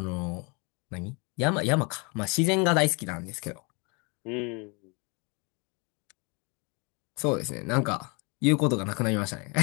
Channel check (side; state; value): right; quieter; 31.4 dB